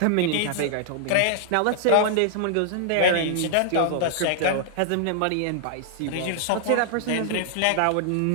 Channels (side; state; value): both; different; correlation -0.01